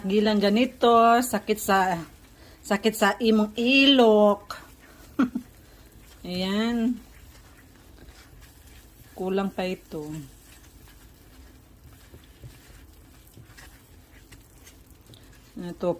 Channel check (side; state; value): both; identical; correlation 1.00